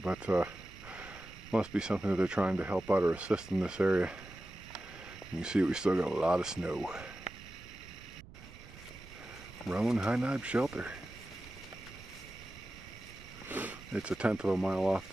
must be something that they're trying to help out or assist in this area. You can see we still got a lot of snow. Roan High Knob Shelter. It's a 1/10 of a mile off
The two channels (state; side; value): noise; right; rumble, 18 dB below the sound